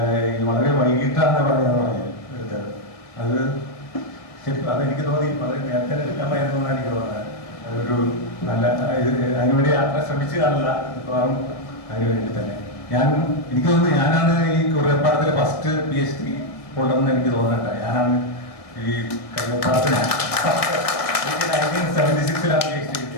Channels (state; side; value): late; right; 1.8 ms